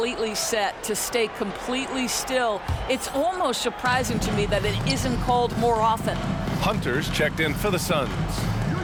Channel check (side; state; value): both; identical; correlation 1.00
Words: set, to stay completely still. It's almost surprising to me that it isn't called more often. Hunter's checked in for the Suns.